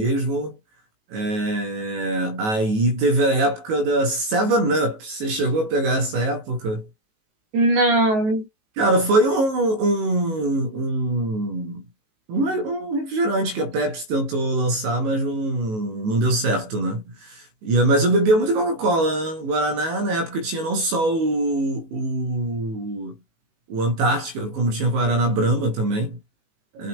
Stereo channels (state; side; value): late; left; 19 ms